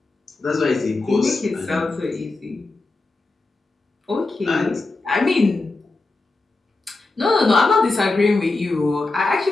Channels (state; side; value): quieter; right; 3.3 dB